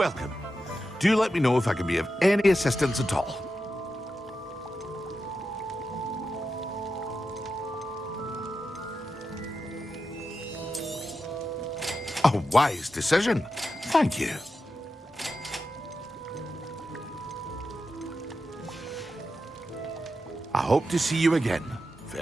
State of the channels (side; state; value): both; normal; correlation 0.89